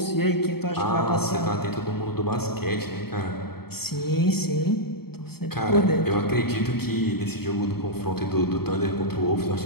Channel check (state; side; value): late; right; 0.96 ms